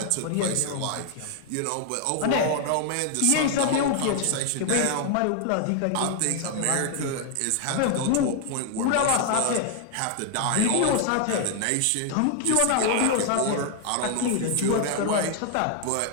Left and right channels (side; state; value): both; different; correlation 0.00